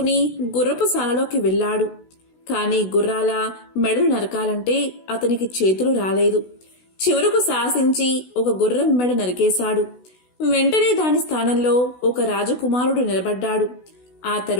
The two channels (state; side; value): late; right; 16 ms